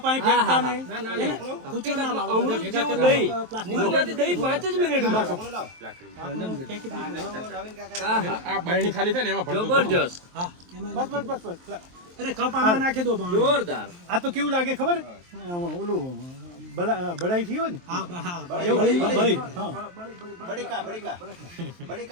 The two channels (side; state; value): left; late; 23 ms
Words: અહીં ફેંકતા નહીં અમૃત જેવું દહીં દૂધમાંથી દહીં 5 જ મિનિટમાં। આ બરણી ખાલી થાય ને એમાં ભરતું જબરજસ્ત હા એમાં બસ બસ બસ બસ અરે કપ આમાં નાખી દો. જોરદાર। આ તો કેવું લાગે ખબર ઓલું બળાઈ થયો ને